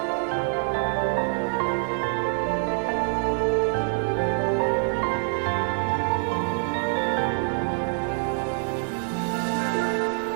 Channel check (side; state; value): left; silent; 61 dB below the other